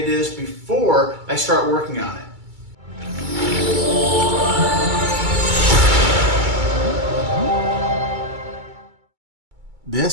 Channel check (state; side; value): late; left; 2.2 ms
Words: is before I start working on it.